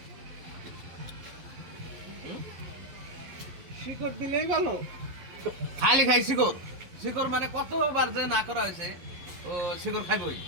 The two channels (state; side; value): late; left; 11 ms